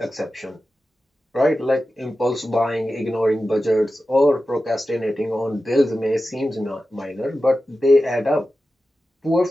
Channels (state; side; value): normal; both; correlation 0.93